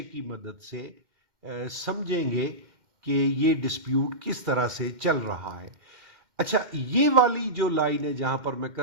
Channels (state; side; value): late; left; 2.1 ms